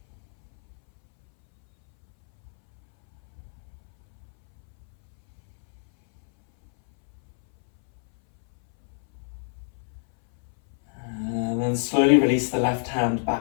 And slowly release the left hand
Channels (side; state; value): right; silent; 61 dB below the other